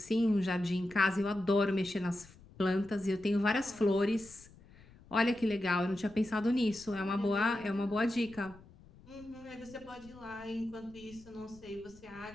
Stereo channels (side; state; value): left; noise; rumble, 23 dB below the sound